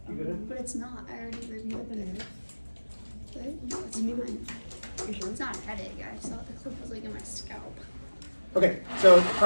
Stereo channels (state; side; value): inverted; both; correlation -1.00